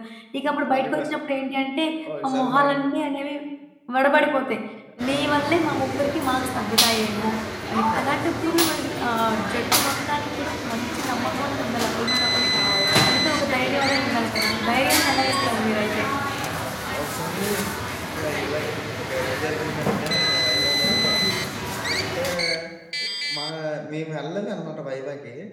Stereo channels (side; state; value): both; identical; correlation 1.00